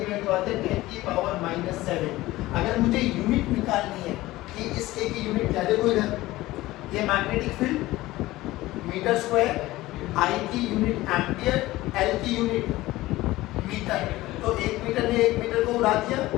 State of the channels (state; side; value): quieter; right; 17.8 dB